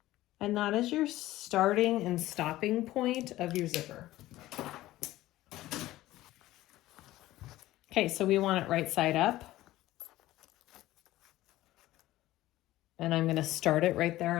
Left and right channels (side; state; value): right; quieter; 16.1 dB